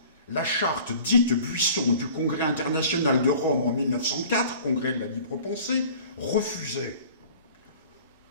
la charte dite Buisson du Congrès international de Rome en 1904, Congrès de la libre pensée, refusait.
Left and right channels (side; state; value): both; inverted; correlation -0.46